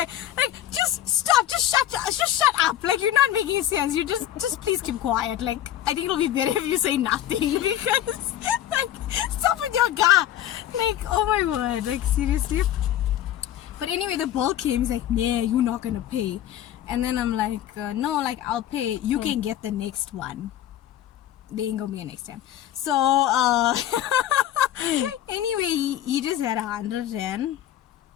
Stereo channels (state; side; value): quieter; right; 11.9 dB